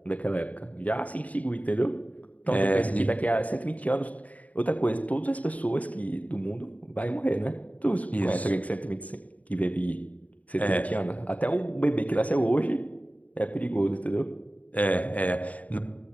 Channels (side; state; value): right; late; 0.071 ms